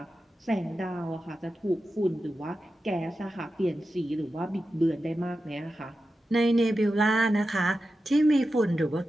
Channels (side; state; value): both; normal; correlation 0.91